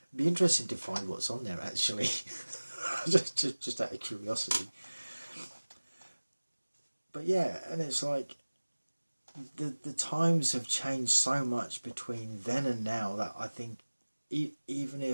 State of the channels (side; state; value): both; inverted; correlation -1.00